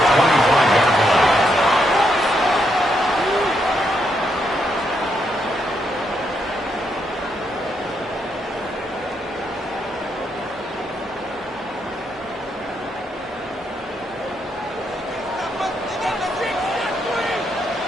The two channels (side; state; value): both; normal; correlation 0.78